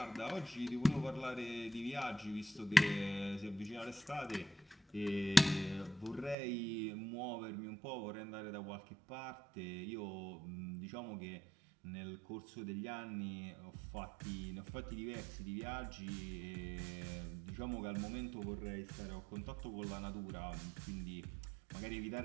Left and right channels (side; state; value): left; drops out; at 6.4 s